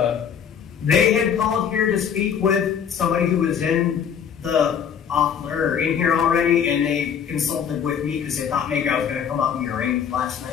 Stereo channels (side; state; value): right; quieter; 7.8 dB